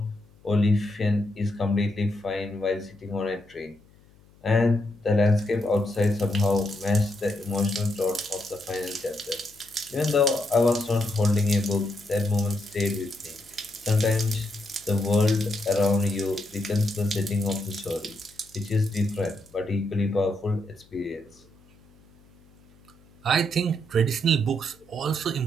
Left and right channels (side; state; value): left; noise; hum, 28 dB below the sound